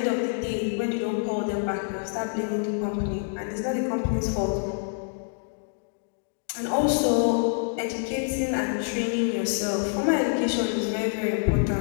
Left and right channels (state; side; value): silent; right; digital silence